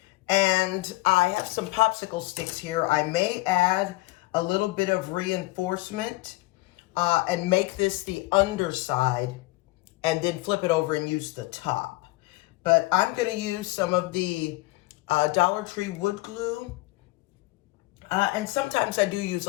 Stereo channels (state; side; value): quieter; right; 21.1 dB